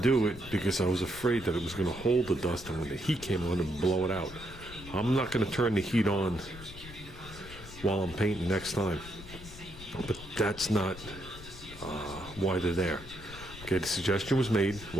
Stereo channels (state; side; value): noise; left; rumble, 15 dB below the sound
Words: do it because I was afraid that it was going to hold the dust, and when the heat came on, it would blow it out. I'm not going to turn the heat on while I'm painting next time. But that's not why they're there. Okay, the suggestion was made.